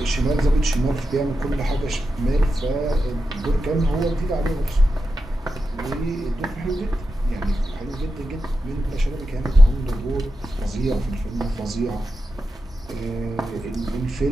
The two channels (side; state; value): both; normal; correlation 0.89